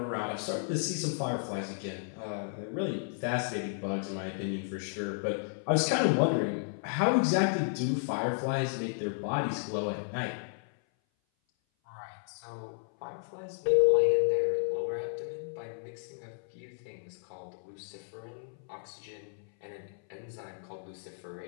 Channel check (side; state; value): right; silent; 56 dB below the other